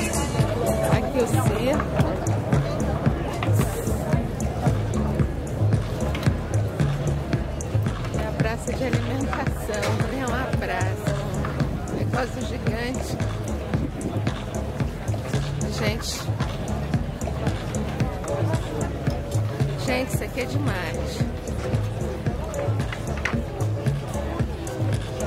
Aqui o circo. É a praça de alimentação. É uma praça. Um negócio gigante. Gente, isso aqui é demais.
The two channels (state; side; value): identical; both; correlation 1.00